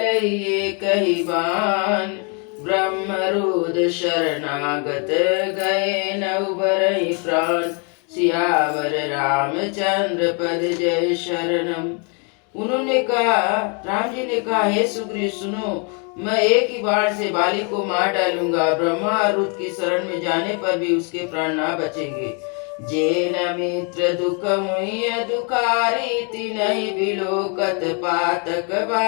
कहि बान, ब्रह्मरुद शरणागत गए न उबरहि प्राण। सियावर रामचंद्र पद जय शरणम। उन्होंने कहा, राम जी ने कहा, हे सुग्रीव सुनो, मैं एक ही बाण से बाली को मार डालूंगा। ब्रह्मा और रुद्र की शरण में जाने पर भी उसके प्राण ना बचेंगे। जे न मित्र दुख मुय दुखारी, तिनहि बिलोकत पातक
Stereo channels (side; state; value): right; quieter; 36.8 dB